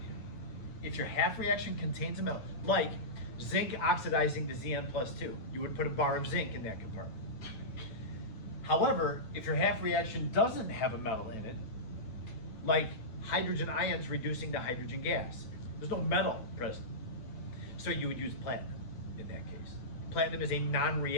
If your half reaction contains a metal, like zinc oxidizing to Zn+2, you would put a bar of zinc in that compartment. However, if your half reaction doesn't have a metal in it, like hydrogen ions reducing to hydrogen gas, there's no metal present. So you would use platinum in that case. Platinum is a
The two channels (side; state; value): right; late; 9.1 ms